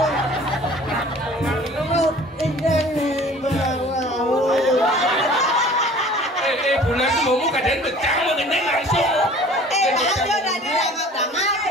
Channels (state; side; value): normal; both; correlation 0.48